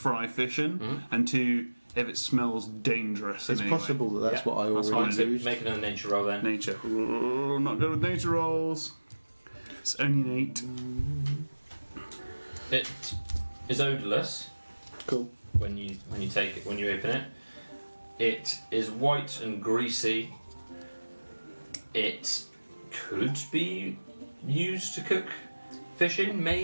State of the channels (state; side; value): inverted; both; correlation -1.00